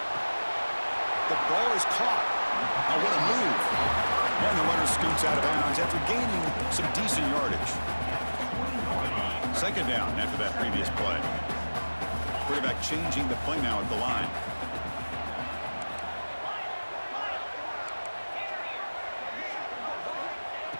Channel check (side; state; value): both; inverted; correlation -1.00